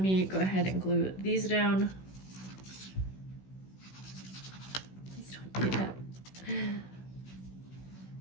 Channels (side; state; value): right; late; 16 ms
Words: me go ahead and glue these down. Please don't do that. Glue